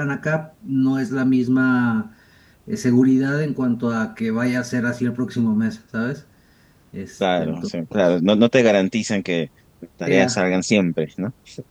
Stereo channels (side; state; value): both; identical; correlation 1.00